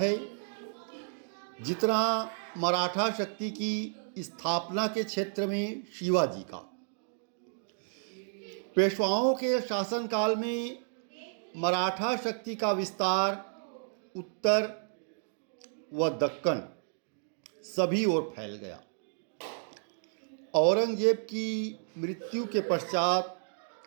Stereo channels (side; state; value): left; silent; digital silence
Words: जितना मराठा शक्ति की स्थापना के क्षेत्र में शिवाजी का। पेशवाओं के शासनकाल में मराठा शक्ति का विस्तार उत्तर व दक्कन सभी ओर फैल गया। औरंगजेब की मृत्यु के पश्चात